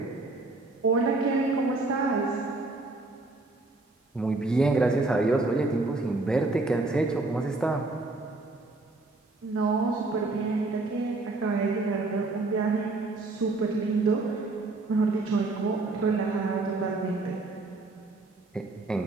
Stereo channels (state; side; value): quieter; left; 3.3 dB